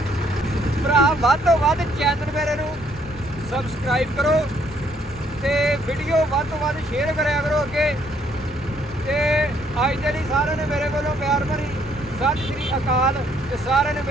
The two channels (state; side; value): normal; both; correlation 0.68